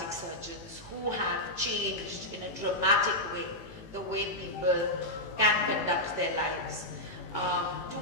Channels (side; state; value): right; late; 18 ms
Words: surgeons who have changed in a dramatic way the way people can conduct their lives. To